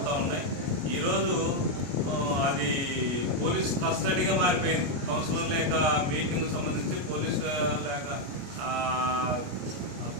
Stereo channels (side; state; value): left; late; 29 ms